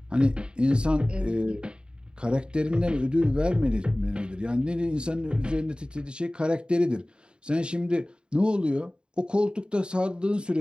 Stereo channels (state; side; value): late; left; 0.051 ms